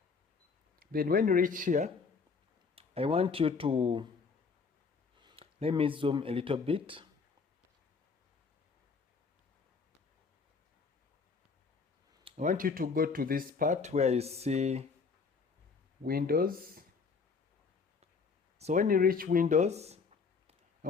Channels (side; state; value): right; quieter; 5.1 dB